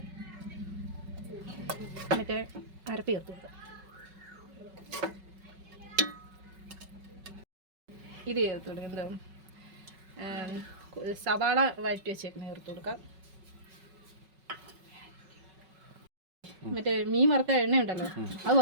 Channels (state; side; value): late; left; 5.3 ms